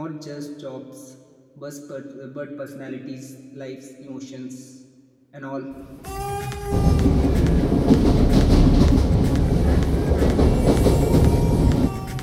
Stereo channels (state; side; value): identical; both; correlation 1.00